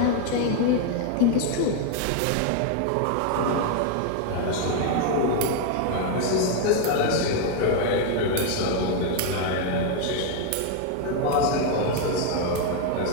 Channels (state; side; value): different; both; correlation 0.01